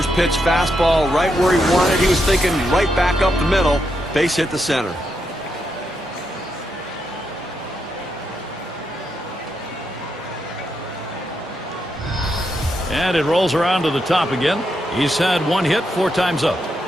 pitch fastball right where he wanted. He was thinking right back up the middle. Base hit the center. And it rolls around to the top again. He's had 1 hit 4 times up.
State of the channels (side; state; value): both; normal; correlation 0.82